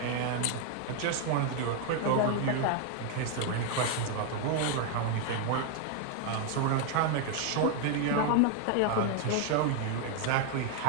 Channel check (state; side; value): different; both; correlation 0.01